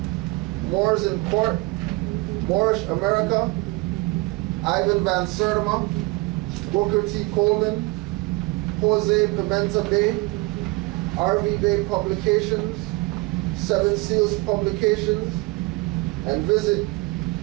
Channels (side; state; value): left; quieter; 23.3 dB